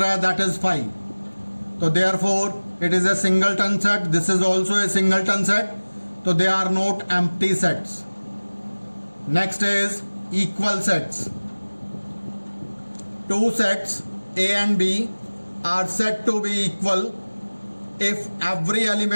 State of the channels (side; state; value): both; inverted; correlation -1.00